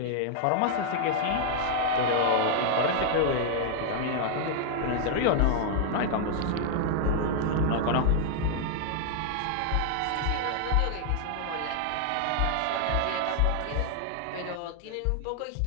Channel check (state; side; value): different; both; correlation -0.01